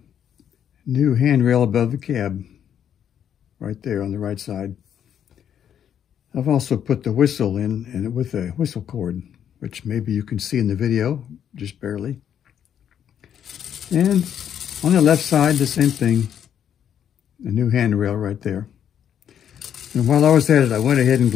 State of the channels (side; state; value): right; quieter; 9.2 dB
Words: new handrail above the cab, right there on the right side. I've also put the whistle in, and with a whistle cord, which maybe you can see in the video, just barely. And on the left side, the same thing, a new handrail right there. And while I was at it, I went ahead and